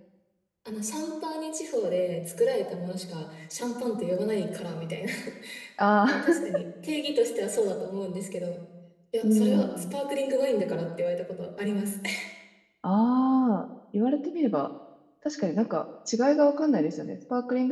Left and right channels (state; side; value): identical; both; correlation 1.00